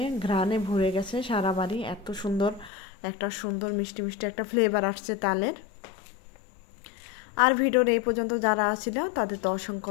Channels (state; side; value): drops out; right; at 2.7 s